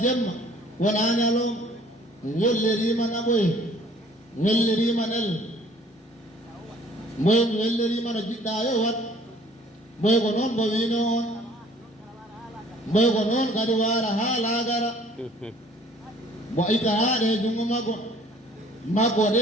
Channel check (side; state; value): both; normal; correlation 0.55